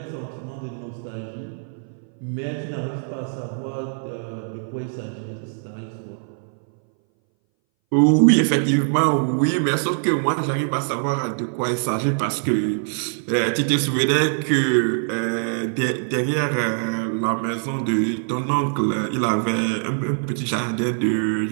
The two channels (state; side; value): silent; left; 61 dB below the other